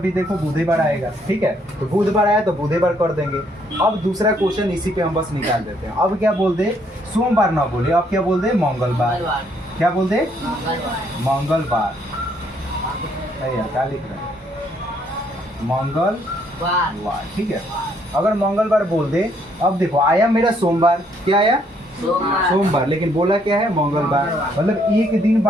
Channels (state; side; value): normal; both; correlation 0.69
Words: भी देखो बुधवार आएगा, ठीक है। तो बुधवार आया तो बुधवार कर देंगे। अब दूसरा क्वेश्चन इसी पे हम बस निकाल देते हैं। अब क्या बोल दे, सोमवार ना बोले, अब क्या बोल दे, मंगलवार। क्या बोल दे, मंगलवार। यार क्या लिख रहे हैं, मंगलवार, ठीक है। अगर मंगलवार बोल दे, अब देखो आया मेरा सोमवार, क्या आया सोमवार, लेकिन बोला क्या है मंगलवार, मतलब एक दिन